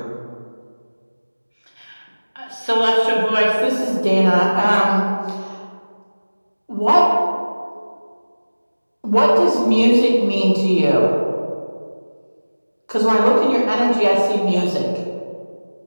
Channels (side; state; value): both; inverted; correlation -1.00